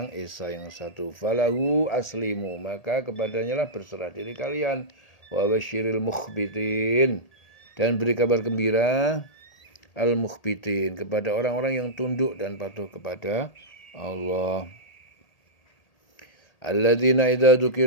esa, yang satu. Falahu aslimu, maka kepadanya lah berserah diri kalian. Wa basyiril mukhbitin, dan beri kabar gembira al-mukhbitin, kepada orang-orang yang tunduk dan patuh kepada Allah. Alladzina idza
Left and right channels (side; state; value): right; late; 1.8 ms